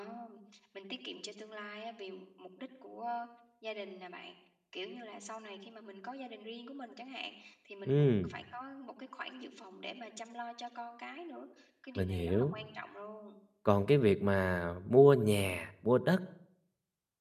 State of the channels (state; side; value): identical; both; correlation 1.00